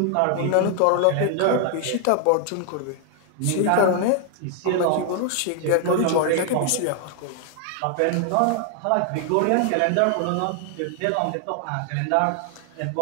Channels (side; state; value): both; different; correlation 0.00